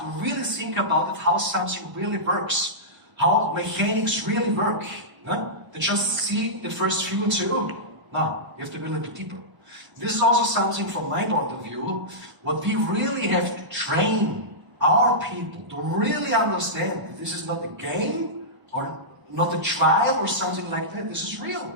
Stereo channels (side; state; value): left; late; 1.0 ms